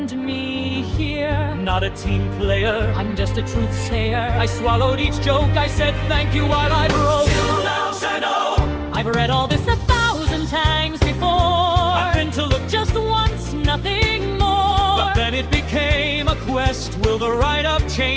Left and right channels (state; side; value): identical; both; correlation 1.00